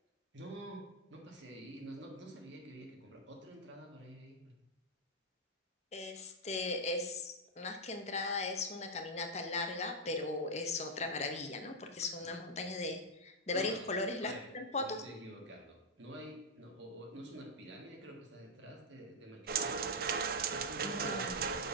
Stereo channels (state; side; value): normal; both; correlation -0.03